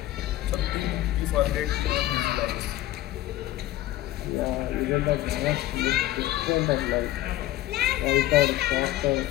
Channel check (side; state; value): right; quieter; 15.3 dB